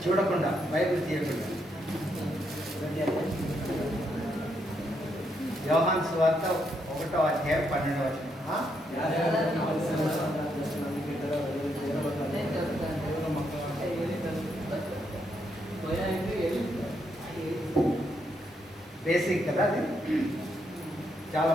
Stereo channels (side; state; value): both; normal; correlation 0.77